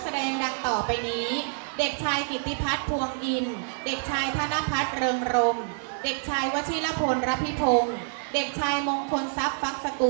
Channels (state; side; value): silent; left; digital silence